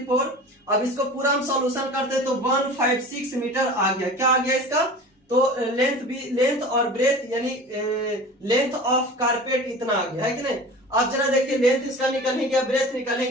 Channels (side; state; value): both; normal; correlation 0.37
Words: अब इसको पूरा हम सॉल्यूशन करते हैं तो 156 मीटर आ गया। क्या आ गया इसका, तो लेंथ और ब्रेथ यानी लेंथ ऑफ कारपेट इतना आ गया, है कि नहीं। अब जरा देखिए लेंथ इसका निकल ही गया, ब्रेथ निकल ही